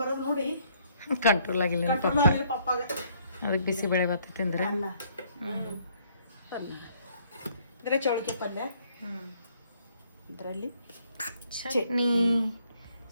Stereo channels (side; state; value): both; inverted; correlation -0.66